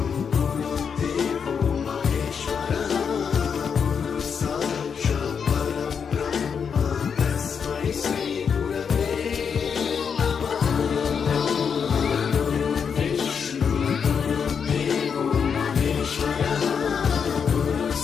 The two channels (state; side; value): quieter; right; 6.6 dB